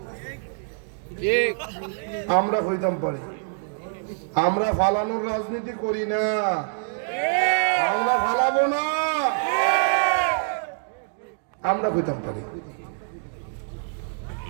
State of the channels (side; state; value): left; silent; digital silence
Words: আমরা হইতাম পারি, আমরা ফালানোর রাজনীতি করি না, আমরা ফালাবো না, আমরা হইতাম পারি।